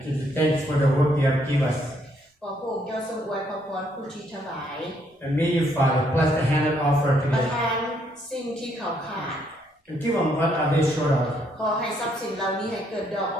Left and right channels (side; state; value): both; normal; correlation 0.71